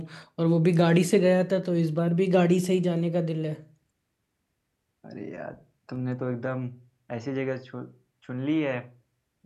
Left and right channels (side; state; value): both; identical; correlation 1.00